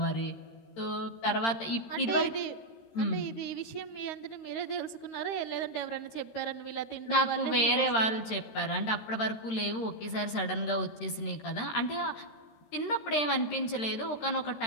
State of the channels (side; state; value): right; late; 13 ms